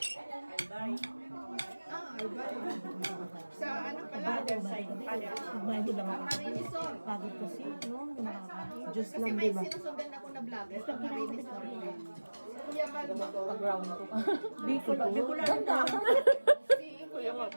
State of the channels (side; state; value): both; inverted; correlation -1.00